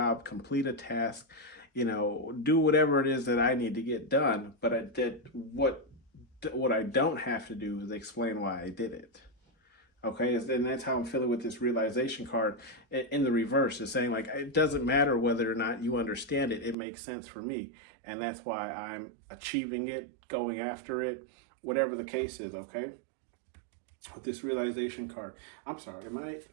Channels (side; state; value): left; drops out; at 16.8 s